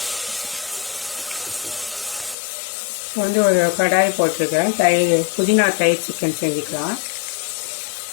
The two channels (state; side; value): drops out; right; at 2.4 s